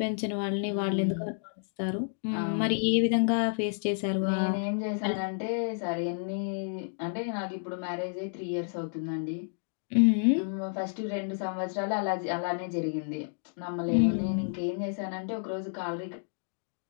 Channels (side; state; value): right; silent; digital silence